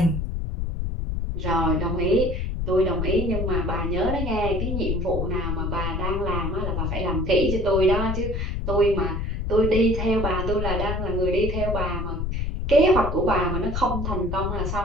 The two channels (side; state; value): left; noise; rumble, 2 dB below the sound